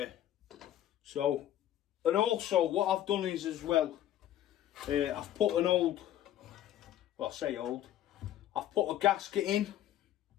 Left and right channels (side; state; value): right; quieter; 12.1 dB